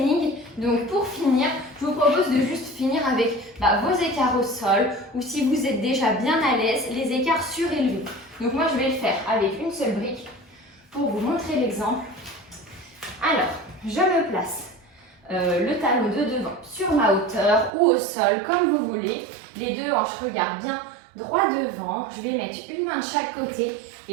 Donc, pour finir, je vous propose de juste finir avec vos écarts au sol. Ou si vous êtes déjà bien à l'aise, les écarts surélevés. Donc, moi, je vais le faire avec une seule brique pour vous montrer l'exemple. Alors, je me place le talon de devant sur ma hauteur ou au sol, comme vous voulez. Les deux hanches regardent bien droit devant. Je vais mettre une main de chaque côté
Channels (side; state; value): left; drops out; at 17.7 s